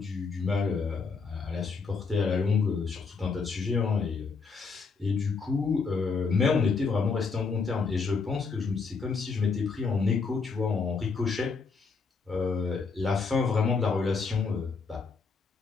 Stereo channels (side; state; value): right; quieter; 4.8 dB